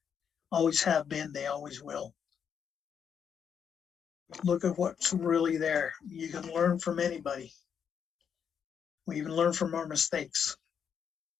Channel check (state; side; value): quieter; right; 7.5 dB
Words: Always have been, they always will. Look at what's really there. You can learn from anybody. We even learn from our mistakes.